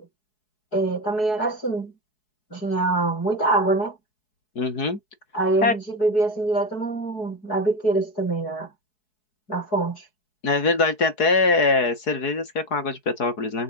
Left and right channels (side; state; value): right; late; 4.7 ms